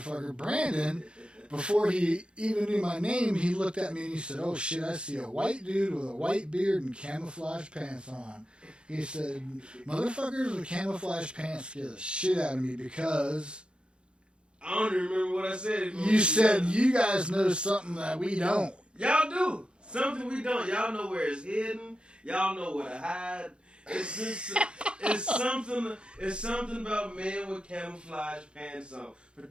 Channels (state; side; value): late; left; 0.055 ms